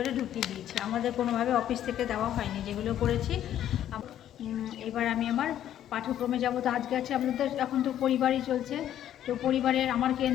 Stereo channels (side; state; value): right; quieter; 11.2 dB